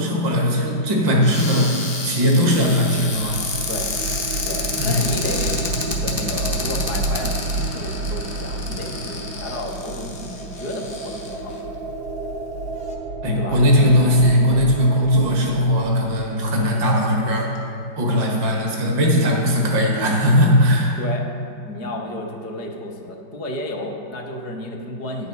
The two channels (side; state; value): left; late; 5.1 ms